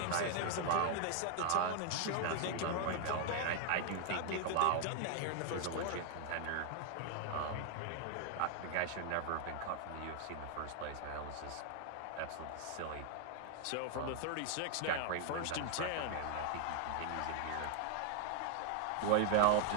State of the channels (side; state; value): both; different; correlation 0.00